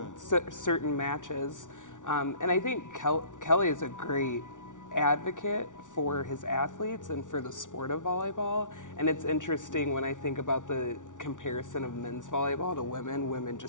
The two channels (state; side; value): late; right; 0.87 ms